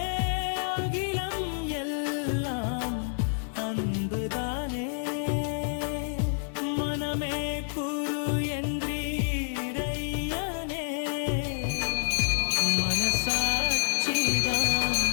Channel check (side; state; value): right; silent; 59 dB below the other